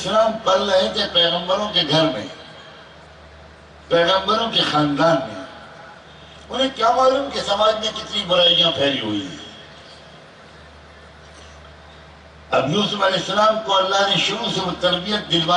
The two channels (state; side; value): identical; both; correlation 1.00